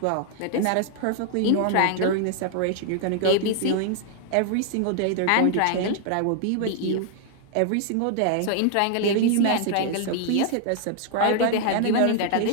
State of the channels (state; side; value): different; both; correlation 0.00